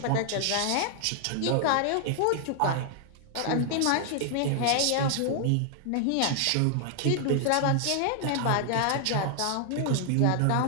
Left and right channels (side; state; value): both; different; correlation 0.00